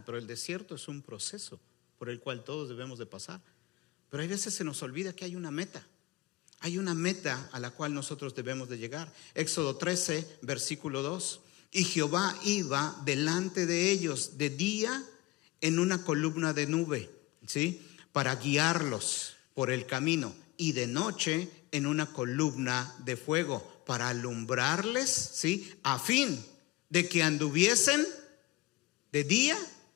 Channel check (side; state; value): right; quieter; 18.9 dB